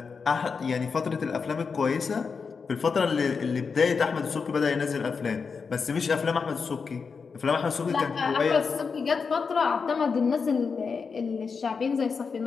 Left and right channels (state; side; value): quieter; right; 5.3 dB